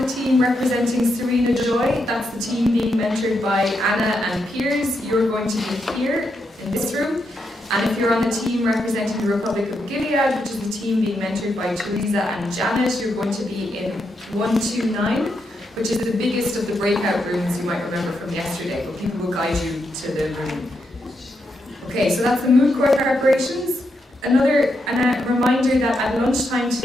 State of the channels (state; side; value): normal; both; correlation 0.82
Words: the team representing Serena Joy, that's the team being mentored by Anna and Piers, you're going to be here in this room. And if you're on the team representing the Republic of Gilead, which is the team being mentored by Teresa and Janet, you're going to be in 129, which is the biggest of the breakout rooms you might remember from yesterday, but people will guide you to the room. Okay, so that's the moot court preparations. Another reminder that at lunchtime